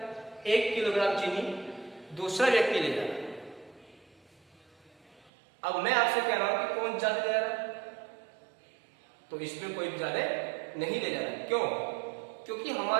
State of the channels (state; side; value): drops out; left; at 5.3 s